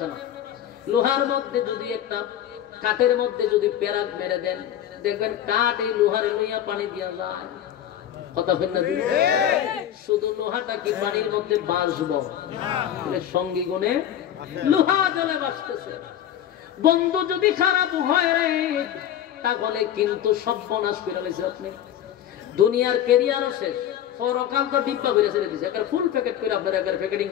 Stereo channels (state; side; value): quieter; right; 10.7 dB